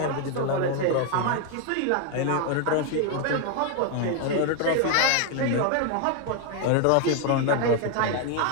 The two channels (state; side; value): different; both; correlation 0.01